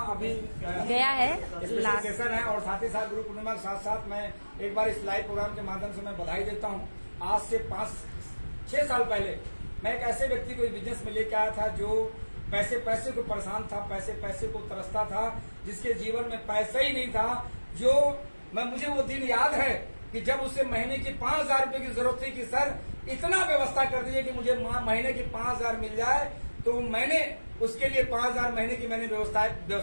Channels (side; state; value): both; inverted; correlation -1.00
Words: अभी गया है स्पेशल सेशन है। और साथ ही साथ गुरु पूर्णिमा के साथ साथ मैं एक बार इस लाइव प्रोग्राम के माध्यम से मैं बधाई देता हूँ। आज से 5-6 साल पहले मैं एक ऐसे व्यक्ति को बिजनेस में लेके आया था जो पैसे को परेशान था, पैसे को तरसता था, जिसके जीवन में पैसा ही नहीं था। जो मुझे वो दिन याद है कि जब उसे महीने की 5,000 रुपए की जरूरत थी कि सर इतना व्यवस्था कर दीजिए कि मुझे महीने की 5,000 मिल जाए। तो मैंने उसके लिए 5,000 महीने की मैंने